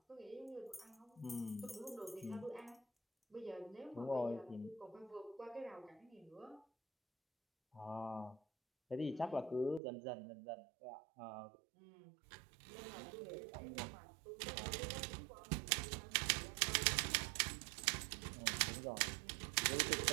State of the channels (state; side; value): drops out; left; at 9.8 s